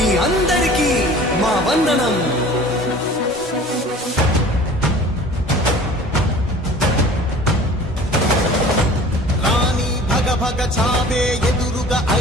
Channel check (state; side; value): normal; both; correlation 0.45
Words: అందరికీ మా వందనం.